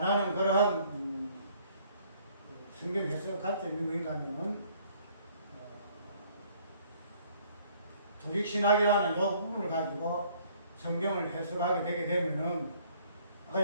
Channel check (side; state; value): both; inverted; correlation -0.60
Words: 그러한 성경 해석 관점이 뭔가 하면은 조직신학이라는 이 부분을 가지고 성경을 해석하게 되게 되면은